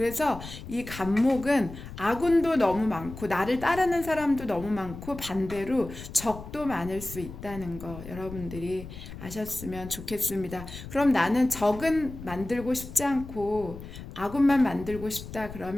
이 간목은 아군도 너무 많고 나를 따르는 사람도 너무 많고 반대로 적도 많을 수 있다는 거 여러분들이 아셨으면 좋겠습니다. 그럼 나는 적은 만들고 싶지 않고 아군만 만들고 싶다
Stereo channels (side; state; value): left; noise; rumble, 12 dB below the sound